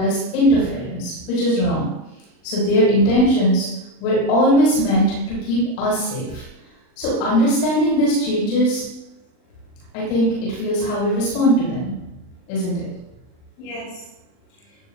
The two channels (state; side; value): late; right; 39 ms